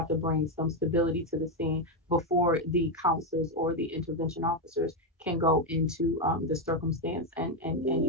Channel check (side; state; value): both; normal; correlation 0.06